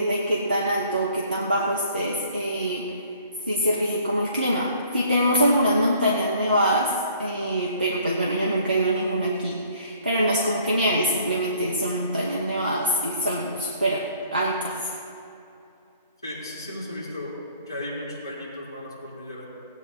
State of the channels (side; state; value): both; inverted; correlation -0.58